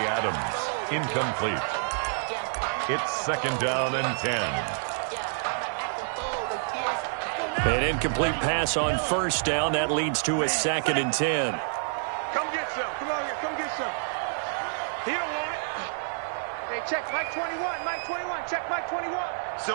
Adams, incomplete. It's 2nd down and 10. An incomplete pass on first down. That leads to a 2nd and 10. Come get some. Come on here. Come get some. He don't want it. Hey, check Mike 21. Mike 21. Check Mike 21.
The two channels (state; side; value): silent; left; digital silence